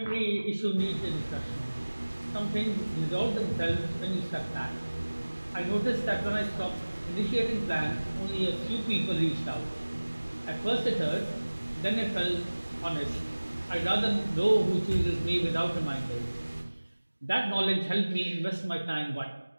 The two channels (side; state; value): both; inverted; correlation -1.00